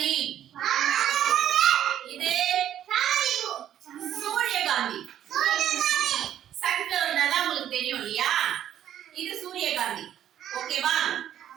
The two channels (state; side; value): quieter; left; 10.9 dB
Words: இது சூரியகாந்தி. சன்ஃப்ளவர்னா உங்களுக்கு தெரியும் இல்லையா? இது சூரியகாந்தி. ஓகேவா?